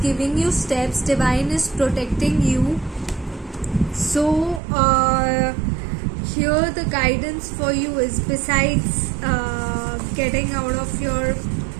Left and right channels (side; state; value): left; drops out; at 4.6 s